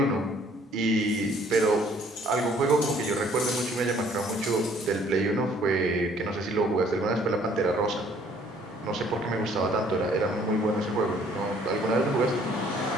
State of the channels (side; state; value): both; normal; correlation 0.60